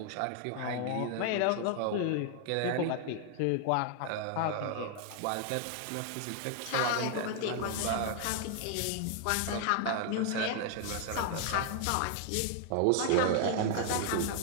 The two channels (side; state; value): both; different; correlation 0.00